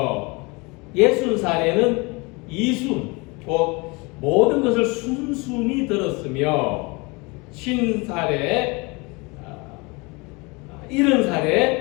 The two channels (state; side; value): quieter; right; 27.1 dB